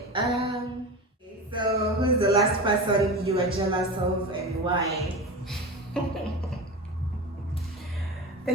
So who's the last person you are jealous of and why? The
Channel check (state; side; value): normal; both; correlation 0.27